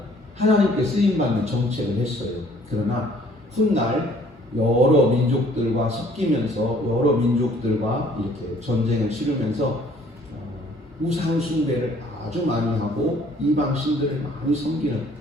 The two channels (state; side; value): normal; both; correlation 0.58